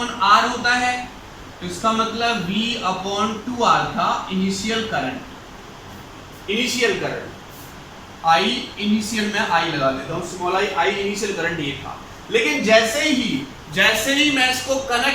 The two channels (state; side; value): identical; both; correlation 1.00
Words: R होता है, तो इसका मतलब V अपॉन 2R था इनिशियल करंट। I इनिशियल में I लगा देता हूं, स्मॉल I इनिशियल करंट ये था। लेकिन जैसे ही मैं इसको